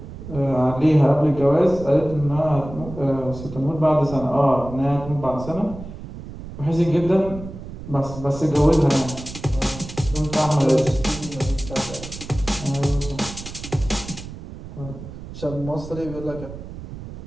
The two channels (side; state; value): right; noise; rumble, 12 dB below the sound